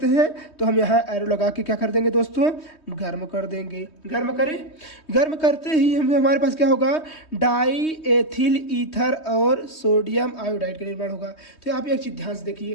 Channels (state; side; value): late; right; 3.2 ms